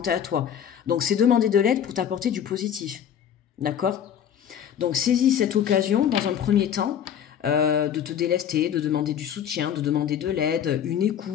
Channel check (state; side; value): quieter; right; 9.1 dB